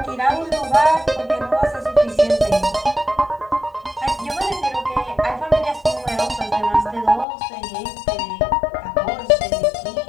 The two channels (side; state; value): right; drops out; at 7.2 s